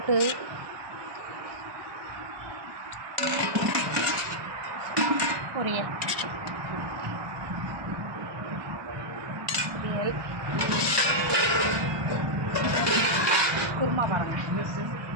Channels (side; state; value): left; late; 1.2 ms